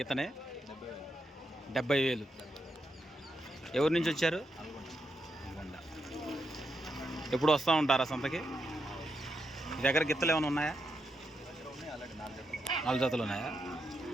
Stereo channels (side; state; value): both; normal; correlation 0.83